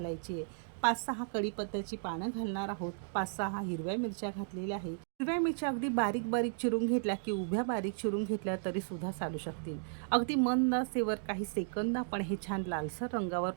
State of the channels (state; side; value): silent; left; digital silence